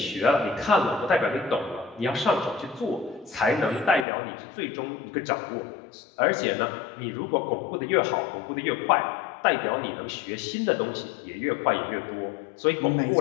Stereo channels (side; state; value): right; drops out; at 4.0 s